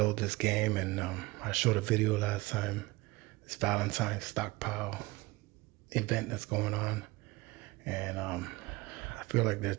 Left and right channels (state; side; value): quieter; left; 21.8 dB